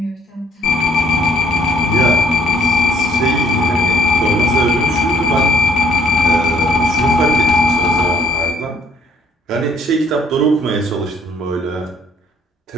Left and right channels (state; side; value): normal; both; correlation 0.62